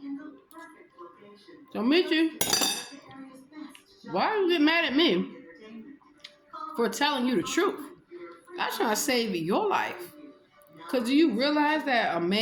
So Michi, why are you getting mad at me for telling you the truth? I'm trying to save your life. Because do you realize that a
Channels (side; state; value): both; identical; correlation 1.00